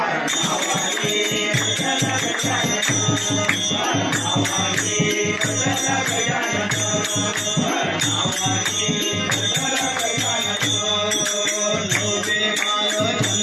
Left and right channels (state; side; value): identical; both; correlation 1.00